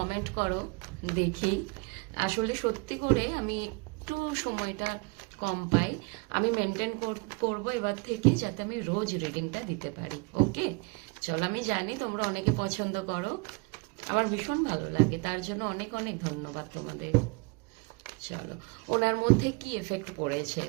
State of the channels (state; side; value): quieter; left; 27.8 dB